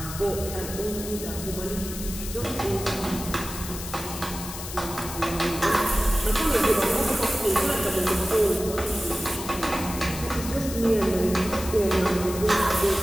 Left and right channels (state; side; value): noise; left; hiss, 9 dB below the sound